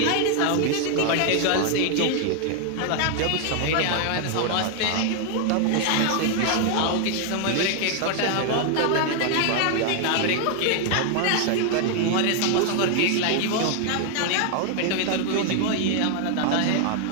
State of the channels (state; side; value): different; both; correlation 0.00